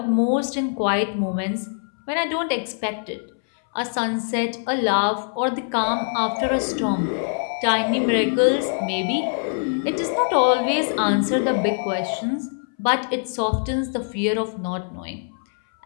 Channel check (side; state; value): right; silent; 63 dB below the other